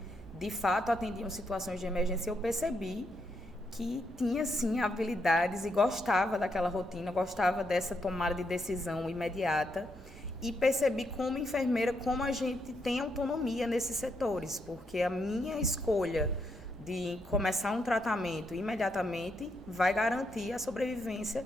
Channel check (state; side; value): normal; both; correlation 0.79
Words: de fato, atendiam situações de emergência. Eu percebi que tinha, sim, habilidades e gostava daquela rotina, gostava dessa tomada de decisão imediata. E percebi como enfermeira, como a gente tem autonomia nesses setores, porque a minha escolha de começar um tratamento imediatamente vai garantir a sobrevivência